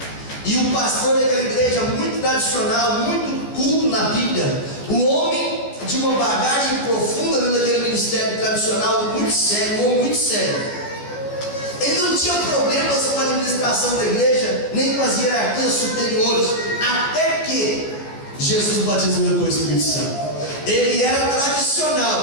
e o pastor daquela igreja, muito tradicional, muito culto na Bíblia, um homem de uma bagagem profunda dentro daquele ministério tradicional, muito sério, um homem muito sério. Ele não tinha problemas com a administração da igreja, nem com as hierarquias superiores, até que Jesus batizou com o Espírito Santo. Ele era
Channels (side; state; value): right; late; 14 ms